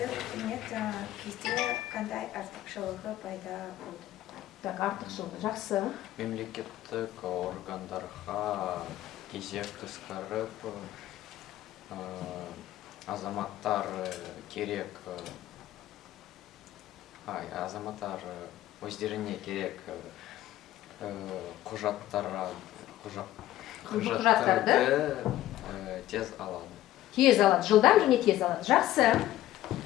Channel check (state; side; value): quieter; right; 14.2 dB